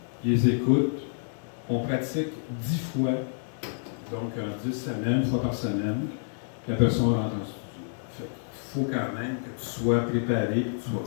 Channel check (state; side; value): silent; right; digital silence